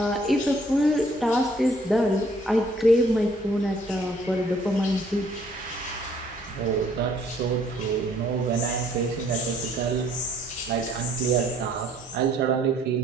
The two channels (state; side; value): normal; both; correlation 0.62